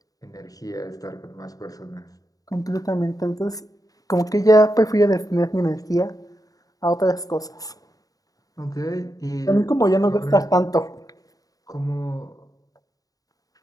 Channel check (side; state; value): right; late; 0.18 ms